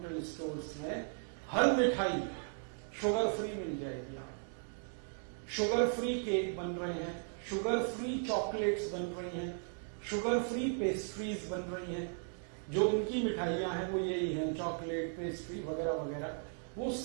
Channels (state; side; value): silent; left; 53 dB below the other